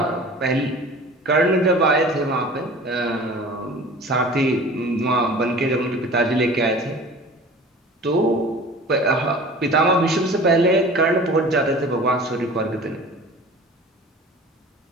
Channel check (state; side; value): normal; both; correlation 0.41